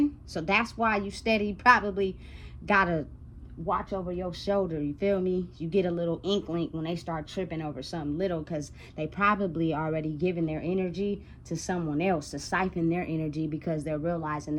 So that's why you steady probably gotta watch over your shoulder. You feel me? You get a little inkling when they start tripping over something little, because they probably already given their energy to someone else to siphon their energy, because they're realizing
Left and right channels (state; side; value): identical; both; correlation 1.00